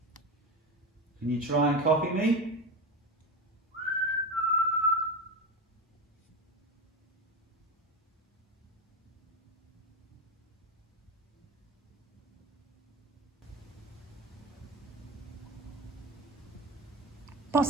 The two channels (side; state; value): both; normal; correlation 0.21